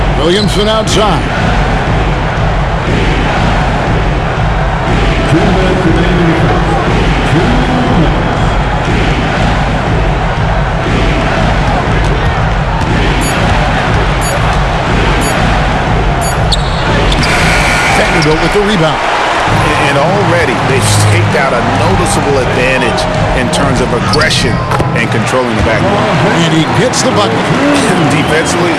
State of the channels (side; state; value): both; identical; correlation 1.00